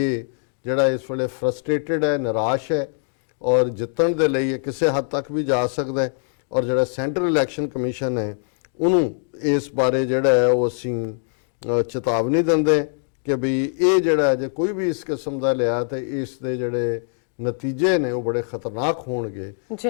ਜਿਹੜਾ ਇਸ ਵੇਲੇ ਫਰਸਟ੍ਰੇਟਡ ਹੈ, ਨਿਰਾਸ਼ ਹੈ ਔਰ ਜਿੱਤਣ ਦੇ ਲਈ ਇਹ ਕਿਸੇ ਹੱਦ ਤੱਕ ਵੀ ਜਾ ਸਕਦਾ ਹੈ, ਔਰ ਜਿਹੜਾ ਸੈਂਟਰਲ ਇਲੈਕਸ਼ਨ ਕਮਿਸ਼ਨ ਹੈ ਉਹਨੂੰ ਇਸ ਬਾਰੇ ਜਿਹੜਾ ਹੈ ਉਹ ਅਸੀਂ ਚੇਤਾਵਨੀ ਦਿੰਦੇ ਕਿ ਵੀ ਇਹ ਜਿਹੜਾ ਜੇ ਕੋਈ ਵੀ ਇਸ ਕਿਸਮ ਦਾ ਲਿਆ ਤੇ ਇਸ ਦੇ ਜਿਹੜੇ ਨਤੀਜੇ ਨੇ ਉਹ ਬੜੇ ਖਤਰਨਾਕ ਹੋਣਗੇ,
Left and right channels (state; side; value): silent; right; 60 dB below the other